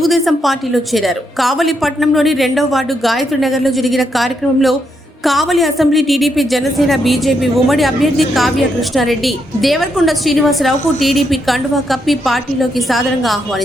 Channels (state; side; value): normal; both; correlation 0.79